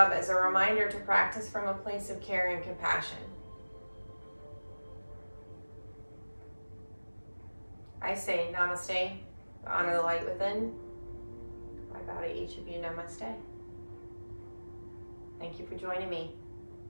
as a reminder to practice from a place of care and compassion. I say namaste, honor the light within. I bow to each of you, namaste. Thank you for joining me.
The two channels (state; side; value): inverted; both; correlation -1.00